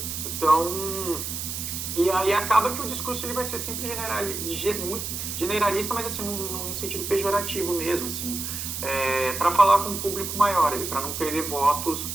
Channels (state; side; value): noise; right; hiss, 5 dB below the sound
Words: Então, e aí acaba que o discurso ele vai ser sempre muito generalista, mas assim, num sentido pejorativo mesmo, assim, para falar com um público maior, para não perder votos